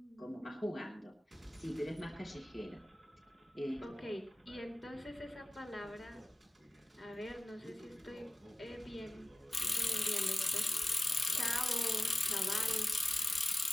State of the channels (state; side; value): normal; both; correlation 0.97